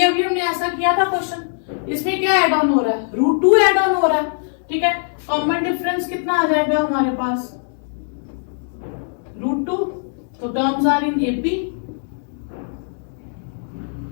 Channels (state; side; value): silent; right; digital silence